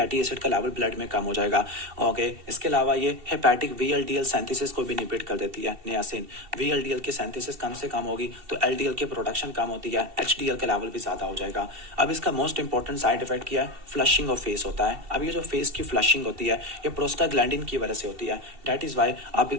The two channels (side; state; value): left; late; 2.7 ms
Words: एसिड का लेवल ब्लड में कम हो जाएगा। ओके, इसके अलावा ये हेपेटिक VLDL सिंथेसिस को भी इनहिबिट कर देती है नियासिन। VLDL की सिंथेसिस कम से कम होगी तो LDL की प्रोडक्शन कम होती है, HDL का लेवल भी ज़्यादा हो जाएगा। अब इसका मोस्ट इंपॉर्टेंट साइड इफेक्ट क्या है, फ्लशिंग ऑफ फेस होता है। अब ये जो फेस की फ्लशिंग होती है ये प्रोस्टाग्लैंडिन की वजह से होती है। दैट इज़ वाई आप